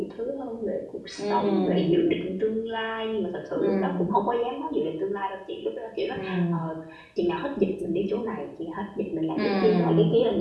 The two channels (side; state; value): both; identical; correlation 1.00